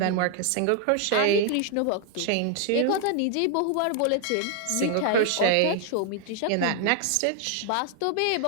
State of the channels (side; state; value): both; different; correlation 0.00